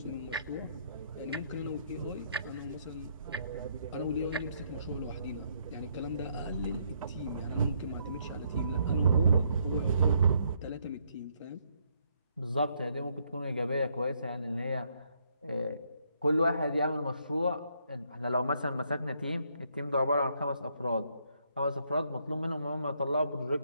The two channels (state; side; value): inverted; both; correlation -0.72